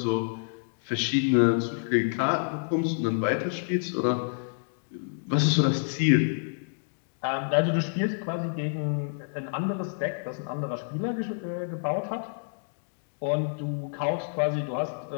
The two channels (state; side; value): silent; right; digital silence